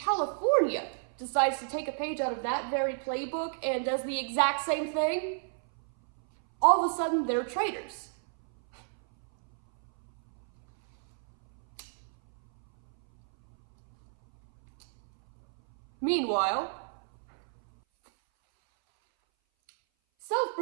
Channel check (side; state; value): left; silent; 58 dB below the other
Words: decides to take a page out of that very playbook and does the exact same thing, all of a sudden they're traitors. Meanwhile,